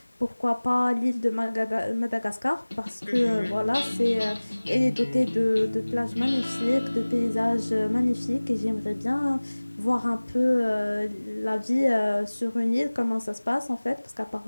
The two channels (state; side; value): inverted; both; correlation -1.00